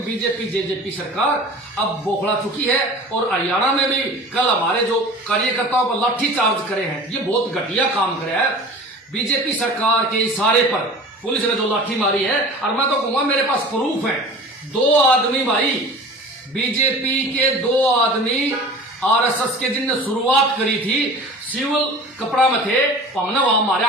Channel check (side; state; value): both; normal; correlation 0.40